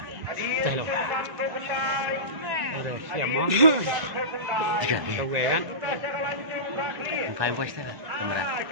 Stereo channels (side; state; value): left; late; 2.0 ms